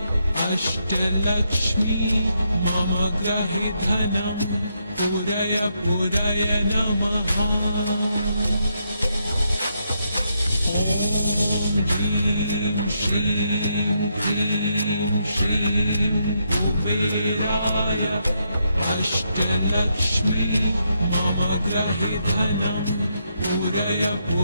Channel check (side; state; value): both; inverted; correlation -0.79